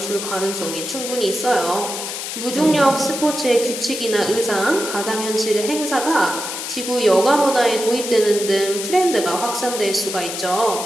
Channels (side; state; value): left; noise; hiss, 6 dB below the sound